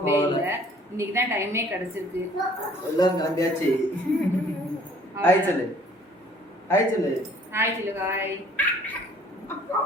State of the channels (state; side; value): normal; both; correlation 0.56